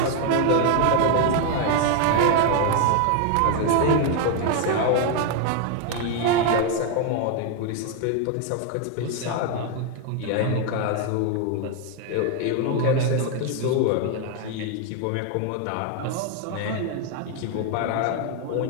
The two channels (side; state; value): both; different; correlation 0.01